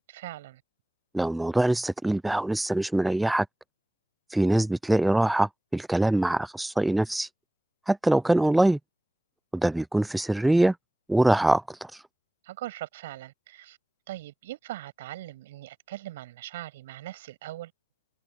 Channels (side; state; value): both; normal; correlation 0.98